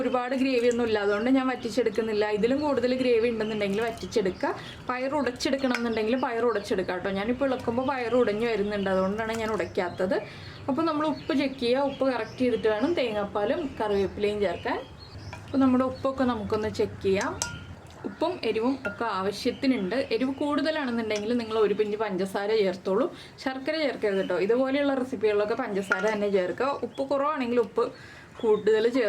ഗ്രേവി ഒന്നും ഇല്ല, അതുകൊണ്ട് ഞാൻ വറ്റിച്ചെടുക്കുന്നില്ല. ഇതിലും കൂടുതൽ ഗ്രേവി ഉണ്ടെന്നുണ്ടെങ്കിൽ വറ്റിച്ചെടുക്കുക. പയർ ഉടച്ചെടുക്കണം എന്നുണ്ടെങ്കിൽ പയർ ഉടച്ചെടുക്കുക കേട്ടോ. ഞാനിപ്പോൾ ഇളക്കുമ്പോൾ പയർ ഉടഞ്ഞു വരുന്നുണ്ട്, അതുകൊണ്ടാണ് ഞാൻ ഉടയ്ക്കാത്തത്. അപ്പോൾ നമ്മൾ ഉപ്പ് ചെക്ക് ചെയ്യുക. ഉപ്പ് കറക്റ്റ് ചെയ്തിട്ട് വേണം തേങ്ങാപ്പാലും കറിവേപ്പിലയും ചേർക്കാൻ. അപ്പോൾ നമ്മുടെ ഉപ്പൊക്കെ നമുക്കൊന്ന് ചെക്ക് ചെയ്യാം. ഉപ്പും എരിവും ഒക്കെ ആവശ്യത്തിനുണ്ട്. എരിവ് കൂടുതലാണെന്നുണ്ടെങ്കിൽ നിങ്ങൾ 1 പിഞ്ച് പഞ്ചസാര ചേർത്തോളൂ. ശർക്കര ചേർക്കരുത് കേട്ടോ. ഇതുപോലെയുള്ള റെസിപ്പികളിലൊക്കെ പഞ്ചസാര തന്നെ ചേർക്കുക. ഉപ്പ് കുറവാണെങ്കിൽ ഉപ്പ് കൂടുതൽ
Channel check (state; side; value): identical; both; correlation 1.00